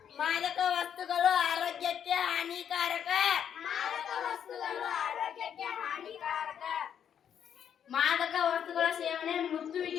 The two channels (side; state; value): right; quieter; 8.7 dB